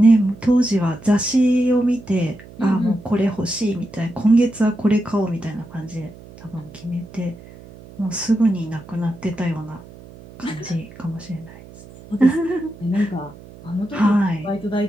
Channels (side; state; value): right; noise; hum, 19 dB below the sound